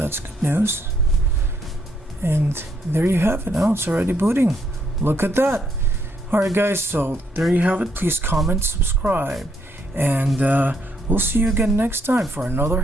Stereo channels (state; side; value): normal; both; correlation 0.73